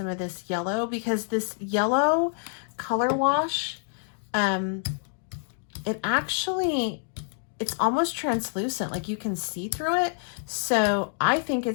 of this yellow, because this yellow color wash, it's almost translucent, like you can see through it. So I think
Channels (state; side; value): silent; right; digital silence